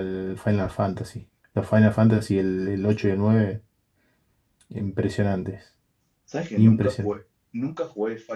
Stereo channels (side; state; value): both; identical; correlation 1.00